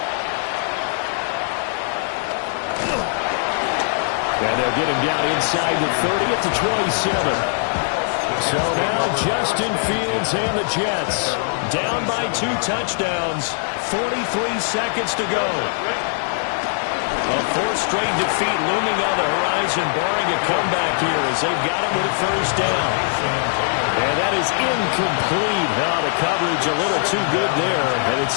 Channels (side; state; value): right; silent; digital silence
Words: And they'll get him down inside the 30 at the 27. So now Justin Fields and the Jets down by 2 touchdowns. 43 seconds to go. A 4th straight defeat looming on the horizon, barring a comeback here as they've got him with a first down. And that is incomplete. Now the coverage a little too good there, and